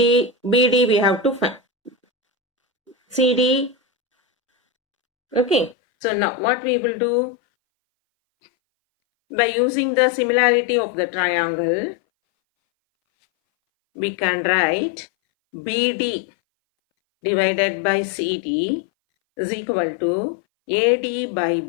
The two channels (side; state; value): right; drops out; at 5.8 s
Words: BD we have to find. CD. Okay. So now what we will do, by using the similarity of the triangle, we can write BD divided by CD is equal to AD by